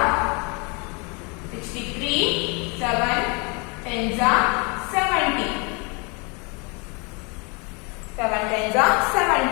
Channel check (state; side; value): quieter; right; 31.5 dB